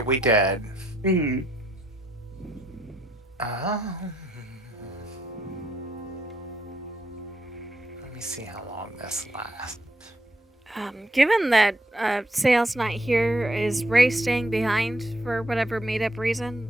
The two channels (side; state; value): both; normal; correlation 0.75